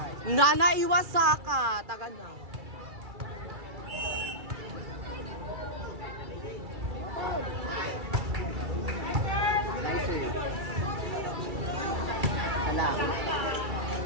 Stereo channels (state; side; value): late; left; 2.3 ms